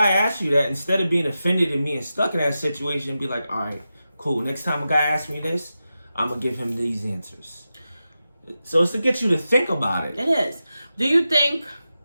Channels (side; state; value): both; inverted; correlation -0.91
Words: asks you that, instead of being offended and being stuck in that situation, be like, all right, cool. Next time a guy asks me this, I'm going to give him these answers. So it's to get you to think about it. It is. Do you think